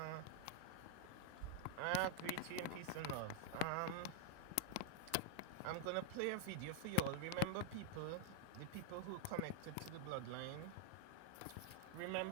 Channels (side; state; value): both; different; correlation 0.00